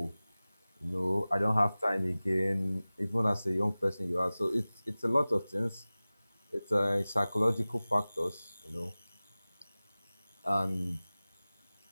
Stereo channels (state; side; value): inverted; both; correlation -0.98